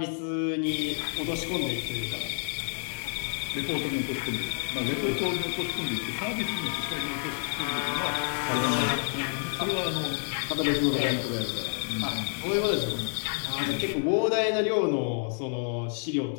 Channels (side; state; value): right; silent; 57 dB below the other